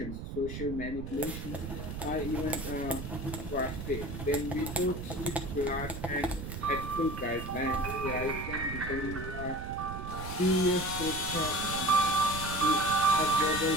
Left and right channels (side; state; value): right; noise; rumble, 7 dB below the sound